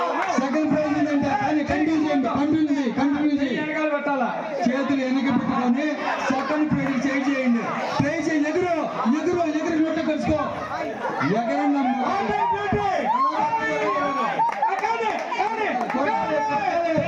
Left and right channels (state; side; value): identical; both; correlation 1.00